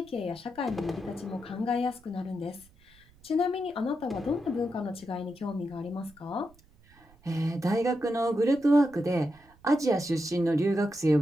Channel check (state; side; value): noise; right; rumble, 28 dB below the sound